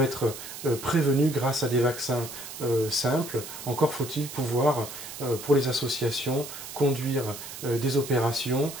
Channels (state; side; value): noise; right; hiss, 11 dB below the sound